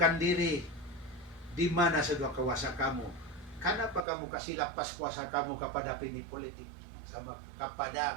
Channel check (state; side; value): drops out; left; at 4.0 s